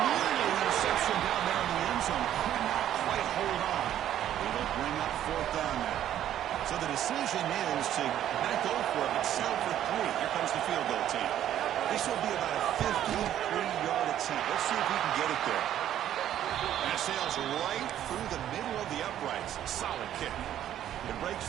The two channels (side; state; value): left; quieter; 11.3 dB